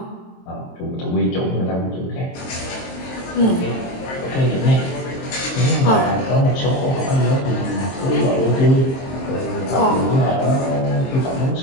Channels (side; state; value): right; late; 23 ms